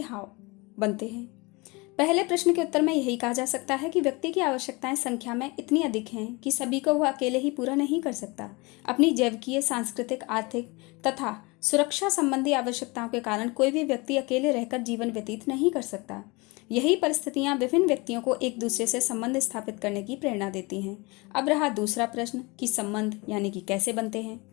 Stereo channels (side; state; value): right; quieter; 26.1 dB